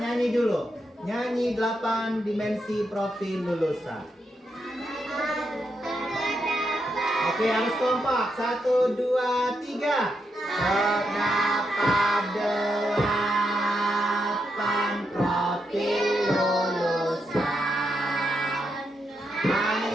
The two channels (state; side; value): normal; both; correlation 0.82